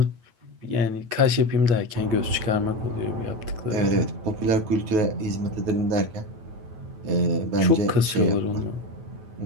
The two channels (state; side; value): late; left; 9.1 ms